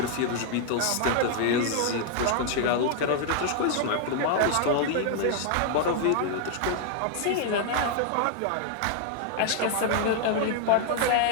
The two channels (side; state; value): both; different; correlation 0.00